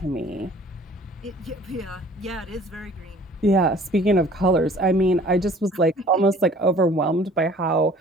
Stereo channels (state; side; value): normal; both; correlation 0.51